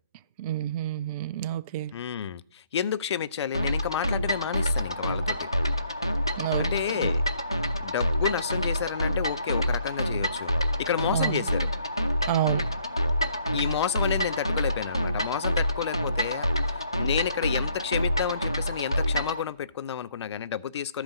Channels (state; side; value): inverted; both; correlation -0.65